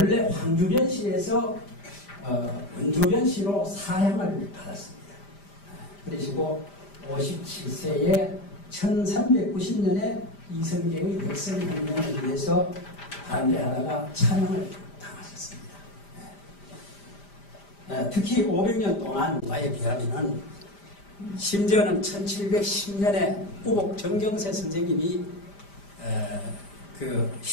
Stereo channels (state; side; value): late; right; 5.0 ms